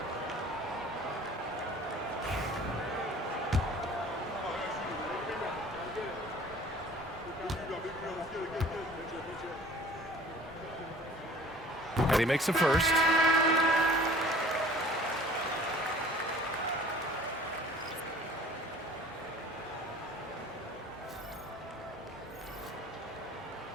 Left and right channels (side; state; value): both; normal; correlation 0.48